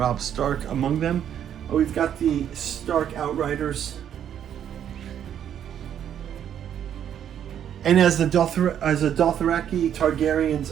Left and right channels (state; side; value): quieter; left; 9.6 dB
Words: Stark among them. We've got the Stark Outriders. And as the Dothraki